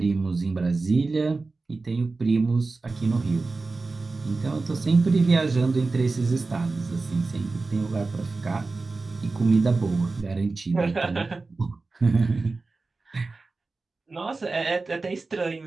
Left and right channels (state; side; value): quieter; left; 3.7 dB